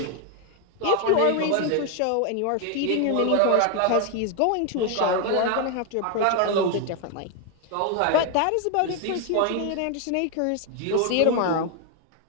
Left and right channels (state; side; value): different; both; correlation 0.01